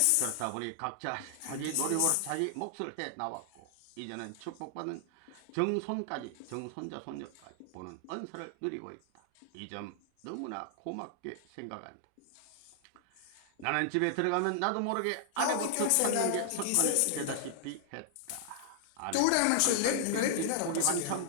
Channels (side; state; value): both; different; correlation 0.00